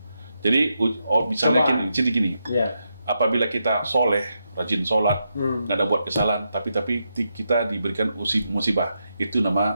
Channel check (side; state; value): both; inverted; correlation -0.84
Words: Jadi misalnya gini, Iya. apabila kita soleh, rajin sholat, Hmm. nggak ada buat kesalahan, tapi kita diberikan musibah, itu